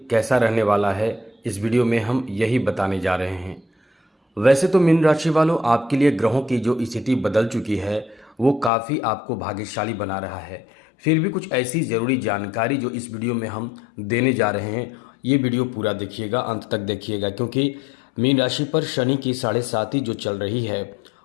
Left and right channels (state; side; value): drops out; right; at 8.7 s